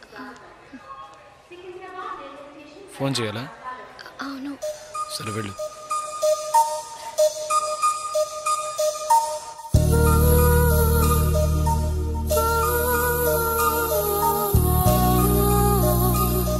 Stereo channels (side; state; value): both; identical; correlation 1.00